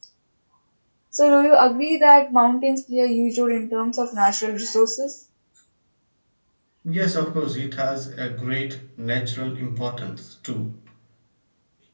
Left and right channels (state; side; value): inverted; both; correlation -1.00